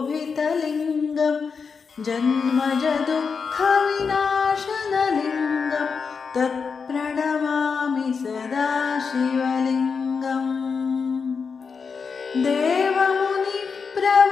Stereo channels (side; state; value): right; quieter; 5.5 dB